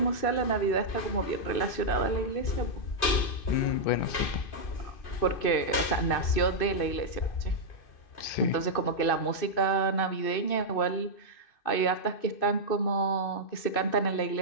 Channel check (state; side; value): late; right; 2.6 ms